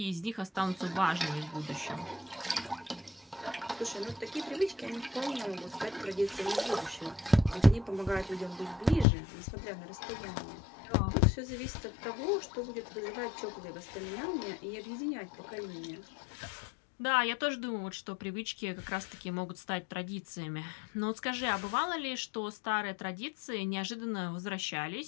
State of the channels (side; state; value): right; drops out; at 9.1 s